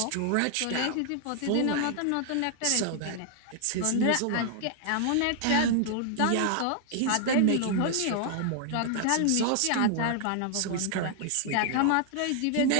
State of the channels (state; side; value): different; both; correlation 0.00